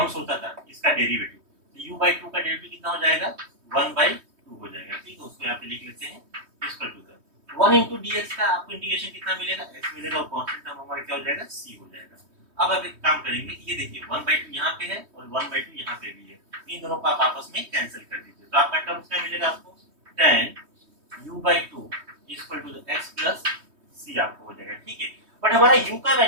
होता था इसका डेरिवेटिव, तो u बाई 2 का डेरिवेटिव कितना हो जाएगा, 1/2 हो जाएगा। ठीक है, उसको यहाँ पे लिख लेते हैं, equal to the 1 into dx का आपको इंटीग्रेशन कितना मिलेगा, x मिलेगा, और कांस्टेंट टर्म हमारा क्या हो जाएगा, c हो जाएगा। अब आप एक काम करेंगे, ये देखिए 1/2 यहाँ पे है और 1/2 यहाँ पे भी है, इन दोनों को आप आपस में कैंसिल कर दीजिए। तो आपका टर्म्स क्या मिलेगा आपको, tan u by 2 equal to the x plus c आपको हो जाएगा। ठीक है, बट हमारा u का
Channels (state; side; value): late; left; 3.2 ms